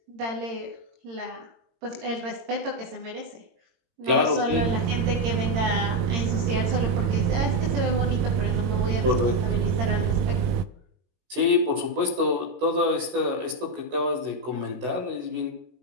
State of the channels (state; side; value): late; left; 22 ms